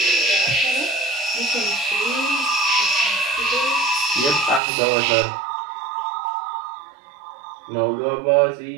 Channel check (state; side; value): drops out; left; at 4.6 s